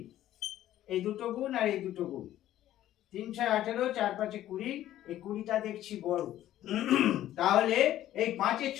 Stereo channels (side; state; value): right; quieter; 13.0 dB